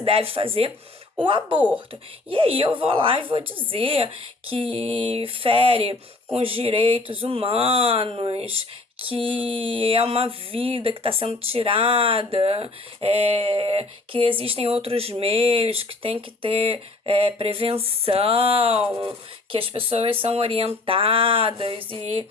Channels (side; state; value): right; quieter; 3.2 dB